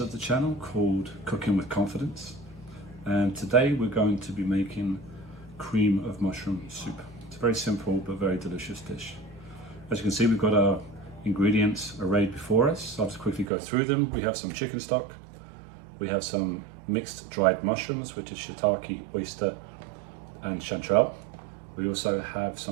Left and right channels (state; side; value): drops out; left; at 13.5 s